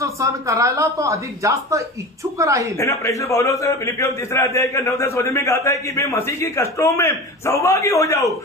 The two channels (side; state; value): both; normal; correlation 0.31